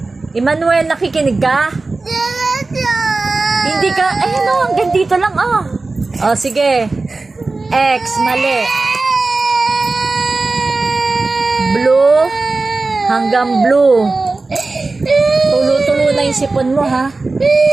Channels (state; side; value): quieter; left; 3.5 dB